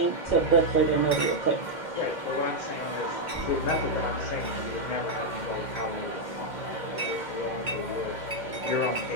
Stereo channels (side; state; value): right; late; 2.1 ms